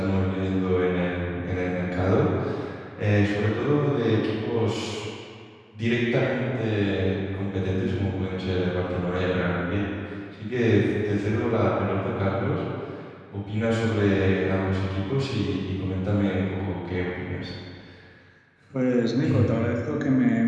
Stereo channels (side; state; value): both; identical; correlation 1.00